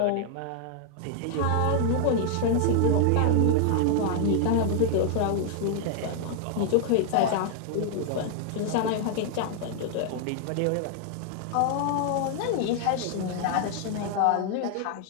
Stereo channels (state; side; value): different; both; correlation 0.00